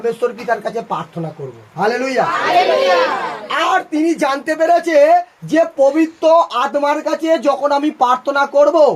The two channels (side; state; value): both; identical; correlation 1.00